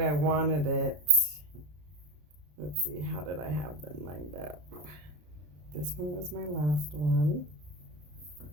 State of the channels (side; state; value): left; late; 33 ms